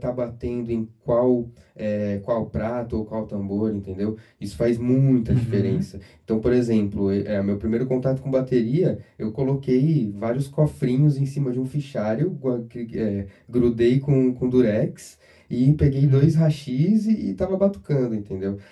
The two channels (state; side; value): identical; both; correlation 1.00